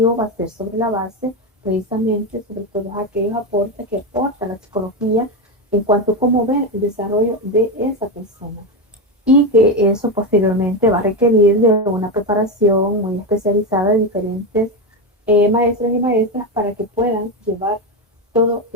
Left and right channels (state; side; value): normal; both; correlation 0.13